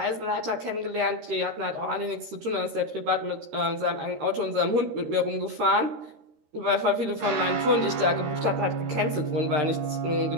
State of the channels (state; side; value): late; left; 13 ms